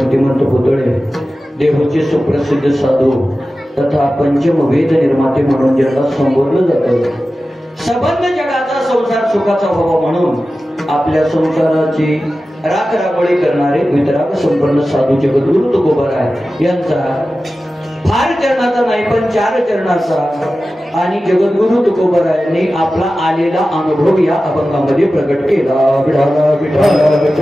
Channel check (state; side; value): normal; both; correlation 0.94